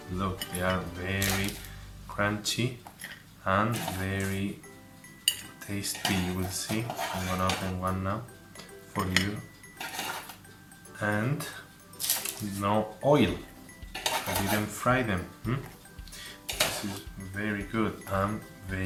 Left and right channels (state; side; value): identical; both; correlation 1.00